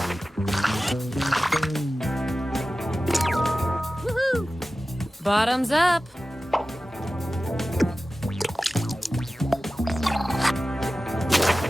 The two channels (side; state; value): both; normal; correlation 0.95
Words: Woohoo! Bottoms up.